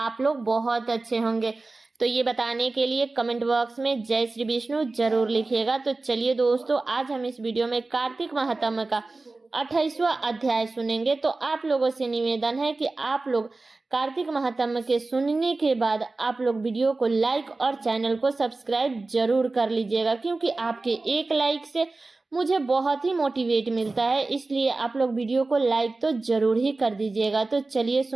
लोग बहुत अच्छे होंगे। तो ये बताने के लिए कमेंट बॉक्स में जय श्री विष्णु जरूर लिखिएगा। तो चलिए दोस्तों, आज हम इस वीडियो में कार्तिक महात्म्य का 28वां अध्याय सुनेंगे। तो आप लोगों से निवेदन है कि आप लोग कार्तिक महात्म्य के सुनने के बाद आप लोग वीडियो को लाइक और चैनल को सब्सक्राइब जरूर कर लीजिएगा, क्योंकि आपके एक लाइक से मुझे बहुत ही मोटिवेट मिलता है। इसलिए आप लोग वीडियो को लाइक तो जरूर ही कर दीजिएगा। तो चलिए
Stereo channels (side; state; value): left; quieter; 3.4 dB